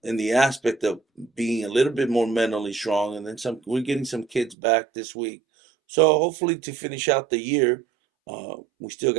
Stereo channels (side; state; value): left; drops out; at 4.5 s